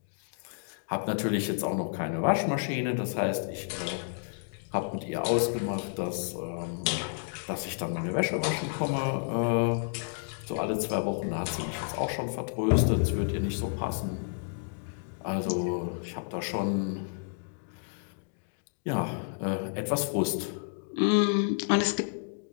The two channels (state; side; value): silent; right; digital silence